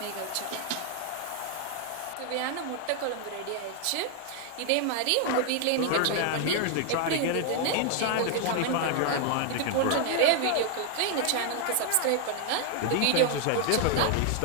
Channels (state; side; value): different; both; correlation 0.00